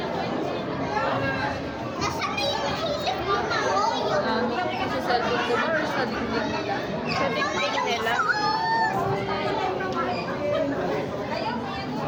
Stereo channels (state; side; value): identical; both; correlation 1.00